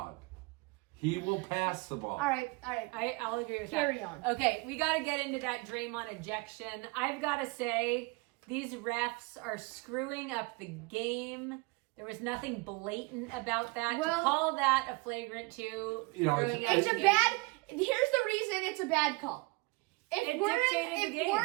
He will pass the ball. All right. I'll agree with that. Carry on. Okay, we got to get into that Draymond ejection. I've got to say, these refs are screwing up the game. There was nothing blatant about that. Well, to call that a flagrant 2. You know, Here's the reason it's a bad call. If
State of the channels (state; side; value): quieter; left; 25.8 dB